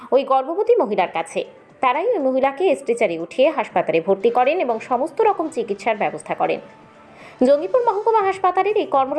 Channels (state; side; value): identical; both; correlation 1.00